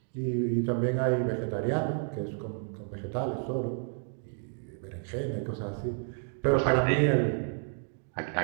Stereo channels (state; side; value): silent; left; 56 dB below the other